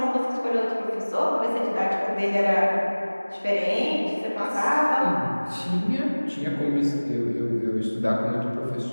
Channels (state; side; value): inverted; both; correlation -1.00